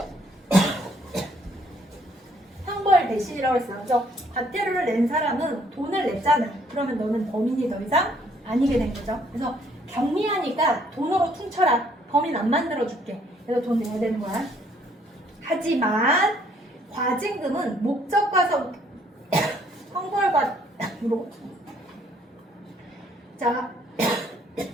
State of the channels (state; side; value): normal; both; correlation 0.65